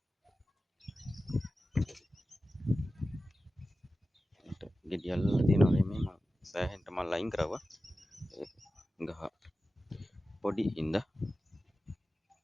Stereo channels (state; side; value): normal; both; correlation 0.94